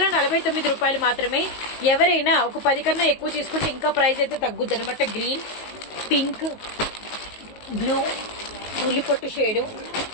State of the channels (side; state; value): right; late; 19 ms